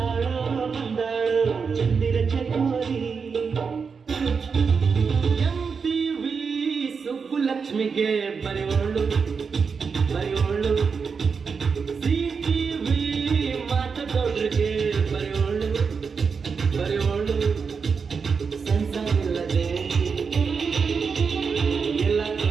ಬಂದಾಳೋ ಚಂದಿರ ಚಕೋರಿ MTV ಸುಬ್ಬುಲಕ್ಷ್ಮಿಗೆ ಬರೆಯೋಳು ಬರೆಯೋಳು CTV ಮಾತದೊಡ್ರಿಗೆ ಬರೆಯೋಳು ಬರೆಯೋಳು ಸಂಸಾರಿಲ್ಲದೆ ಎಲ್ಲ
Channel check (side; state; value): left; quieter; 5.6 dB